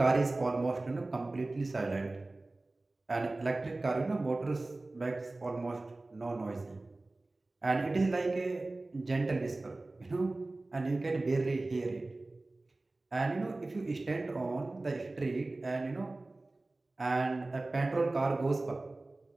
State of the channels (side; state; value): left; quieter; 3.0 dB